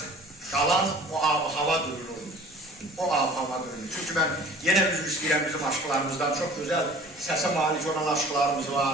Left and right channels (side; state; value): both; normal; correlation 0.47